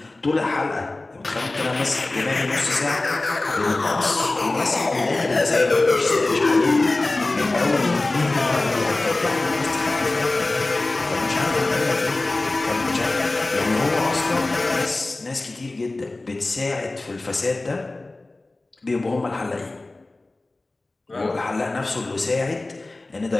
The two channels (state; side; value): quieter; right; 3.0 dB